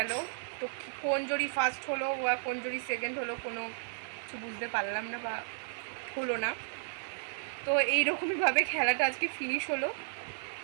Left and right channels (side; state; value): left; silent; 55 dB below the other